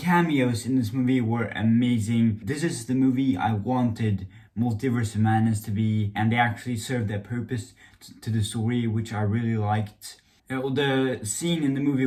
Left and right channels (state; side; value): identical; both; correlation 1.00